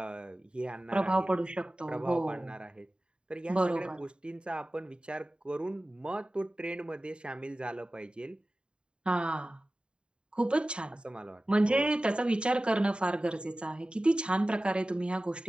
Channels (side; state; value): left; late; 0.051 ms